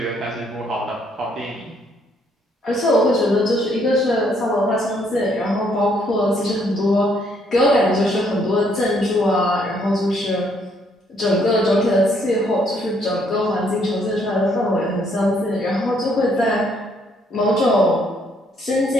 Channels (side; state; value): both; normal; correlation 0.69